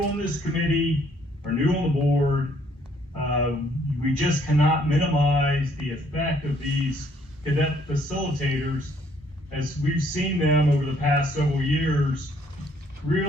on this committee or new on the board, we just cannot minimize the effect of these cadet facilitators, as we've seen them over the past several years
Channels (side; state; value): both; normal; correlation 0.65